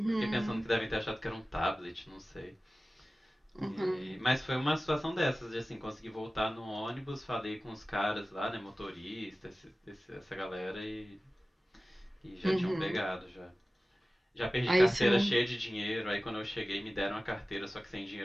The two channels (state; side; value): normal; both; correlation 0.97